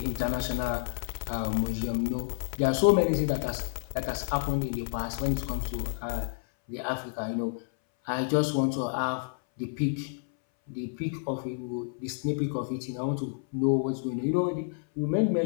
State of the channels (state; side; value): silent; right; 58 dB below the other